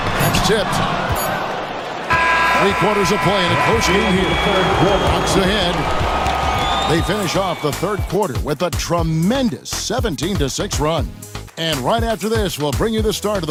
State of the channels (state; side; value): identical; both; correlation 1.00